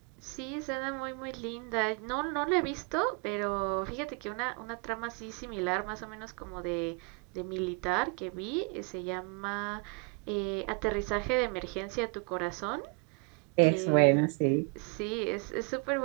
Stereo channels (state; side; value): quieter; left; 33.1 dB